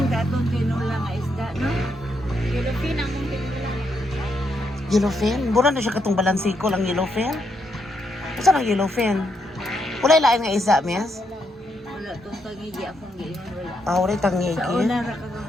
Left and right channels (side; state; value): both; normal; correlation 0.79